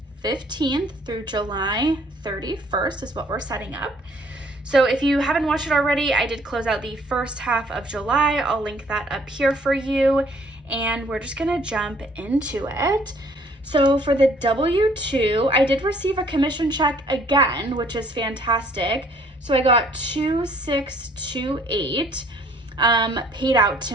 15th through July 31st is what we're setting up. So if you haven't watched it already, I did close out the first half of July. I'll link that up here for you. And we're just gonna jump into it. So for the W-2, I did receive a commission check again, which is fantastic. So I got $2,628 paid out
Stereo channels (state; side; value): normal; both; correlation 0.60